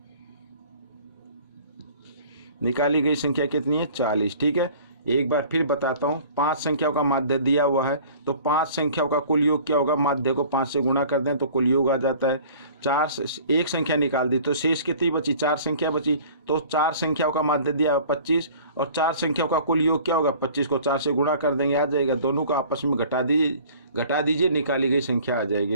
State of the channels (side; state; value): both; inverted; correlation -0.48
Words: संख्या कितनी है? 40। ठीक है, एक बार फिर बताता हूँ। 5 संख्याओं का माध्य दिया हुआ है, तो 5 संख्याओं का कुल योग क्या होगा? माध्य को 5 से गुणा कर दें तो कुल योग आ जाता है। 1 संख्या निकाल दी तो शेष कितनी बची? 4 संख्या बची। तो 4 संख्याओं का माध्य दिया 25 और 4 संख्याओं का कुल योग क्या होगा? 25 को 4 से गुणा कर देंगे, आ जाएगा। दोनों को आपस में घटा दीजिए, निकाली गई संख्या आ जाएगी।